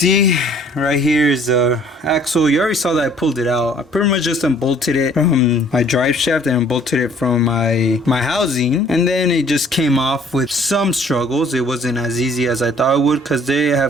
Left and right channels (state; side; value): normal; both; correlation 0.56